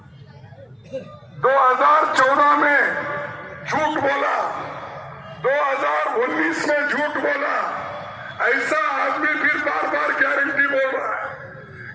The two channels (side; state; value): both; identical; correlation 1.00